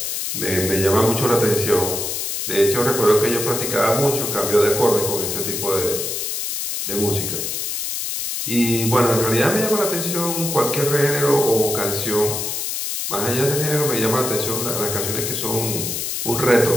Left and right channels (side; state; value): left; noise; hiss, 3 dB below the sound